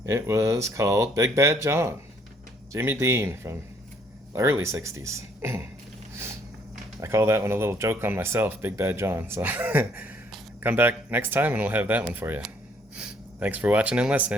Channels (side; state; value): both; normal; correlation 0.65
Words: It was called Big Bad John, Jimmy Dean from the early 60s. I call that one a little joke on myself, Big Bad John. So come back next time and we'll have that one for you. Thanks for watching and